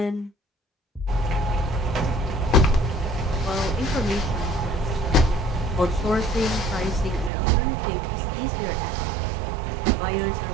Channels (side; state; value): left; drops out; at 7.3 s